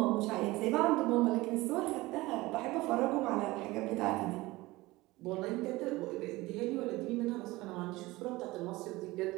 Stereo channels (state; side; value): quieter; left; 20.1 dB